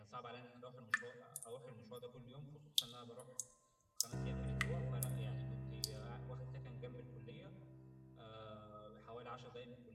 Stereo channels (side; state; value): both; identical; correlation 1.00